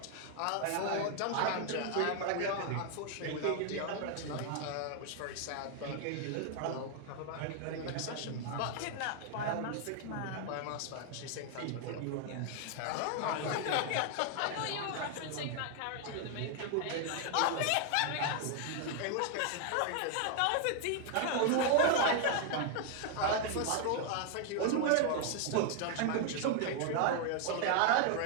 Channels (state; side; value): different; both; correlation 0.00